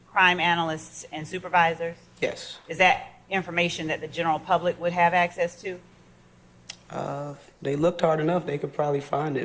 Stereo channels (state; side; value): identical; both; correlation 1.00